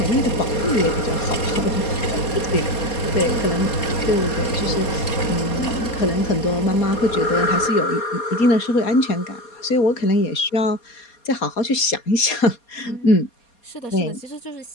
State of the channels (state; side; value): late; right; 4.2 ms